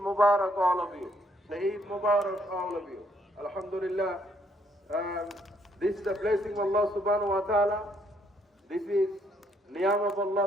Mubarak all of you. The Eid Mubarak all of you. Alhamdulillah. This is the blessing of Allah subhanahu wa ta'ala. This is Niyam of Allah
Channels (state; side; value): normal; both; correlation 0.69